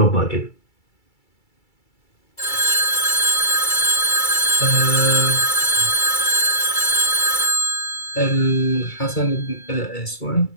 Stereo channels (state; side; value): late; right; 2.3 ms